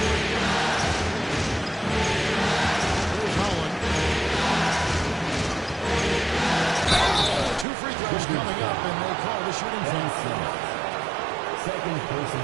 Here's Holland. 2 free throws coming up, and they call the shooting foul. Second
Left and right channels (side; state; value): left; drops out; at 7.7 s